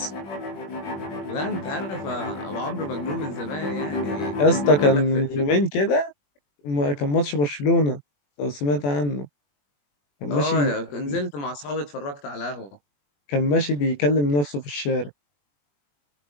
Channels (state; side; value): late; right; 21 ms